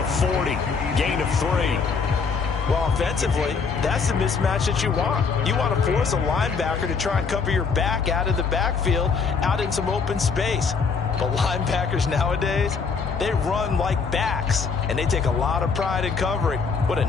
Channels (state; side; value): quieter; right; 5.3 dB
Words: 40. Gain of 3. Well, offensively, that's the mismatch that you want. You want to force a linebacker to try and cover your back out of the backfield, out in some open space. But linebackers nowadays, they run like backs, and they take a lot of pride in covering. What a